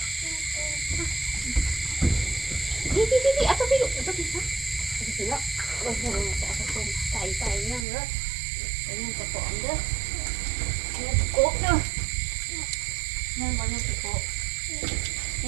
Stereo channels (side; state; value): left; drops out; at 7.9 s